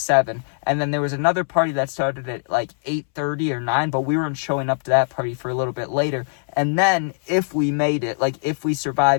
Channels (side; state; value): right; silent; 64 dB below the other